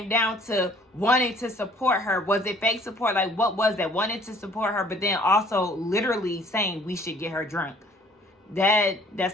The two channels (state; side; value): normal; both; correlation 0.57